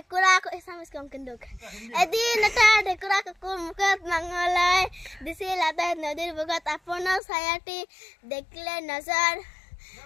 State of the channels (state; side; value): drops out; right; at 7.2 s